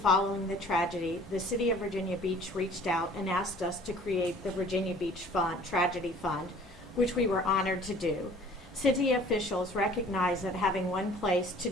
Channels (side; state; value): both; normal; correlation 0.50